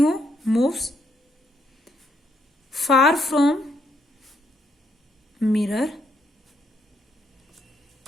moves far from mirror,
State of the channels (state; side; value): normal; both; correlation 0.75